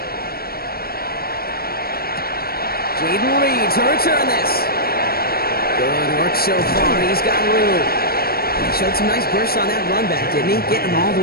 Jaden Reed to return this. Good work so far. He's got room. He showed some nice bursts on that run back, didn't he? Getting them all the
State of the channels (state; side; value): late; right; 0.44 ms